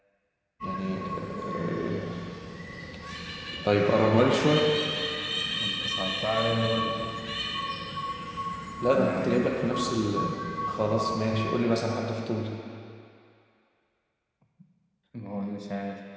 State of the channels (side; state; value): both; identical; correlation 1.00